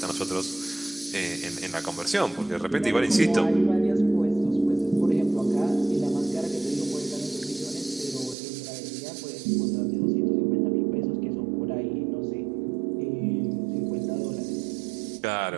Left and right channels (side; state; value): left; drops out; at 8.3 s